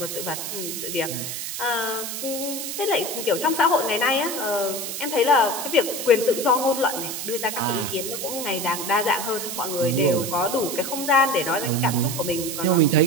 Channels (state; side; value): noise; right; hiss, 5 dB below the sound